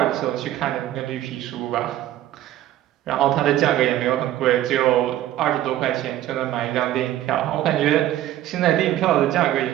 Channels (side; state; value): left; quieter; 13.2 dB